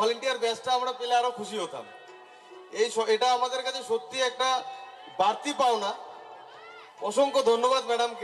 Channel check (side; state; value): both; identical; correlation 1.00